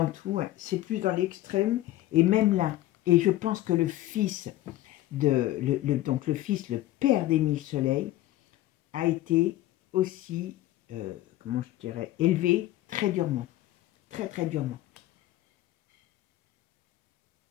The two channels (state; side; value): quieter; right; 15.4 dB